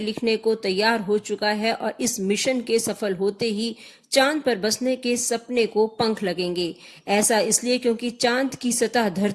को तैयार हो चुका है और इस मिशन के सफल होते ही चांद पर बसने के सपने को पंख लगेंगे। ऐसा इसलिए क्योंकि चांद की सतह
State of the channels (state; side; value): identical; both; correlation 1.00